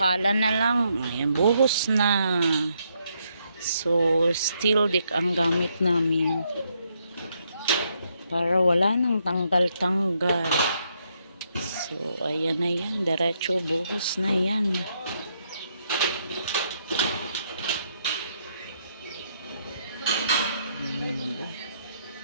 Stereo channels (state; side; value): inverted; both; correlation -0.76